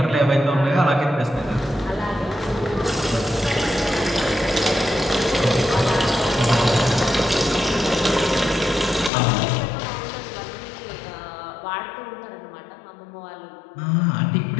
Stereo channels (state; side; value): drops out; right; at 9.1 s